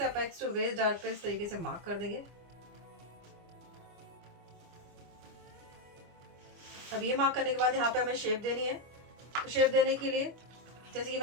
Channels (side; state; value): left; late; 25 ms